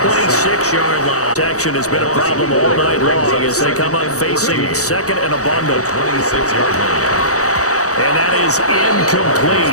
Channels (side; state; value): right; late; 0.65 ms